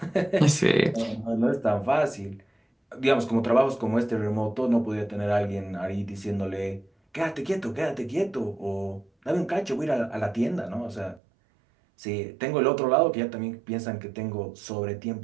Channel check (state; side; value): drops out; left; at 11.2 s